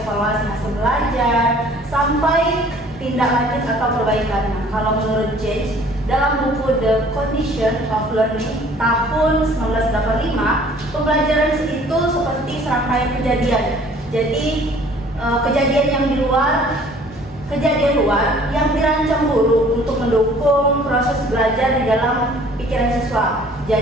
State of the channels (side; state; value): both; normal; correlation 0.53